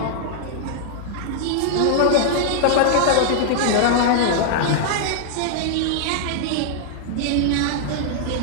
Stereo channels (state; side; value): different; both; correlation -0.01